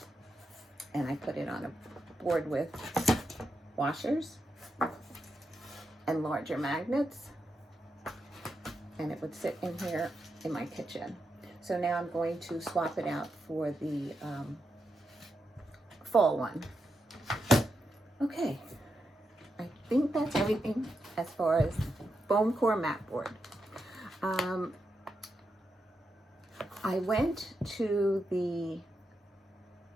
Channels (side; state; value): both; normal; correlation 0.85